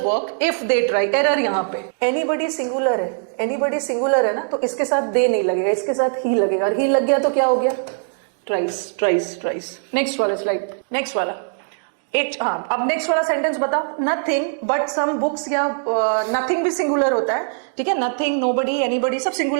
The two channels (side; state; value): left; silent; digital silence